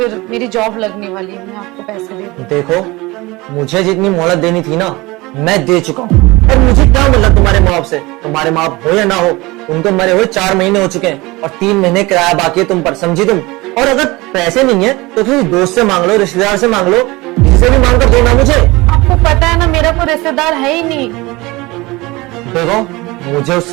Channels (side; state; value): left; quieter; 22.2 dB